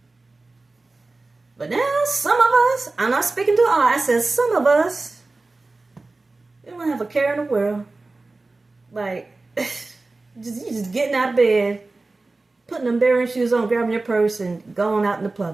But now, some of us, I'm not speaking to all, I said some of us, we don't have a care in the world. Like, you just getting out of bed, putting them bearing shoes on, grabbing your purse, and going out in the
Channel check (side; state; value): left; quieter; 3.4 dB